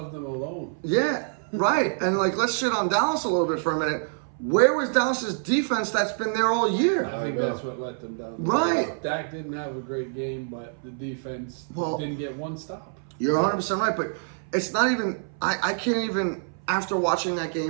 of them alone. yeah, right. And like, let's shit on Dallas a little bit for a minute. Where was Dallas's defense that's been there all year? I think that's what let them down. Right. Dak didn't have a great game, but the defense didn't get one stop. You're 100% right, but it's not even. I can't even, after watching that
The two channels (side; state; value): left; silent; 58 dB below the other